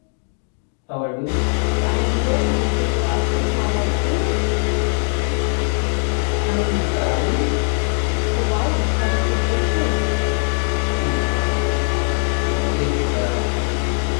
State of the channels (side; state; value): right; silent; digital silence